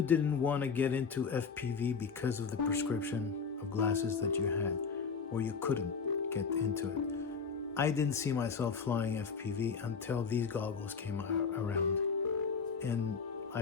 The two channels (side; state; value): right; quieter; 5.6 dB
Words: didn't want to get into FPV because of the prescription of glasses that you had, or you couldn't get into it. I didn't see myself flying FPV until these goggles came around. And I